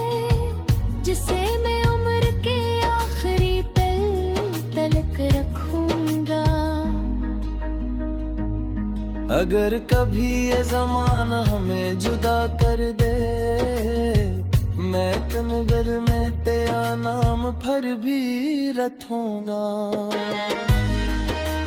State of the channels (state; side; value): identical; both; correlation 1.00